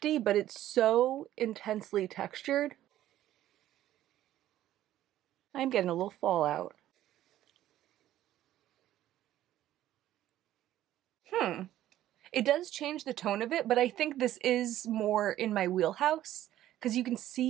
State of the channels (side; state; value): left; quieter; 13.2 dB